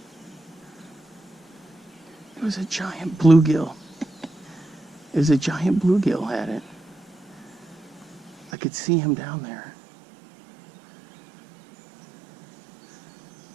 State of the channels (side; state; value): left; drops out; at 8.5 s